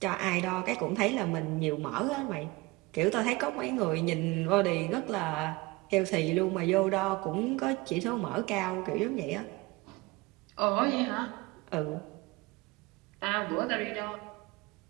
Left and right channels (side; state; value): left; quieter; 23.2 dB